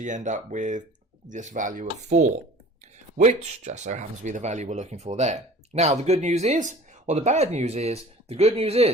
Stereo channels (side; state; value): both; normal; correlation 0.45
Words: end up with this value of 4, which just so happens to be the value we're looking for there. Now the good news is, or the bad news is, the good news